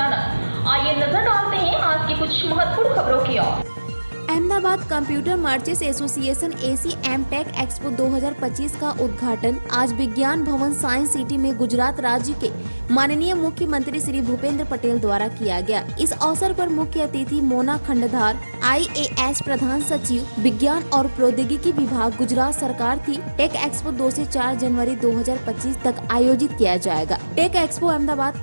आइए नजर डालते हैं आज की कुछ महत्वपूर्ण खबरों की ओर। Ahmedabad computer merchants association ACM tech expo 2025 का उद्घाटन आज विज्ञान भवन साइंस सिटी में गुजरात राज्य के माननीय मुख्यमंत्री श्री भूपेंद्र पटेल द्वारा किया गया। इस अवसर पर मुख्य अतिथि मोना खंडधार IAS प्रधान सचिव विज्ञान और प्रौद्योगिकी विभाग गुजरात सरकार थी। टेक एक्सपो 2 से 4 जनवरी 2025 तक आयोजित किया जाएगा। Tech expo Ahmedabad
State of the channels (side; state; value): both; inverted; correlation -1.00